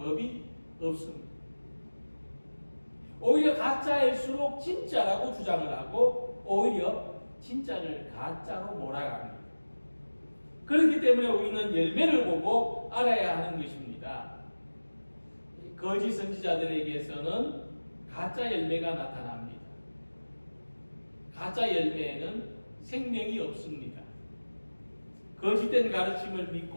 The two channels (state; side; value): inverted; both; correlation -1.00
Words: 없습니다. 오히려 가짜일수록 진짜라고 주장을 하고 오히려 진짜를 가짜로 몰아갑니다. 그렇기 때문에 우리는 열매를 보고 알아야 하는 것입니다. 거짓 선지자들에게서는 가짜 열매가 나타납니다. 가짜 열매에는 생명이 없습니다. 거짓된 가르침을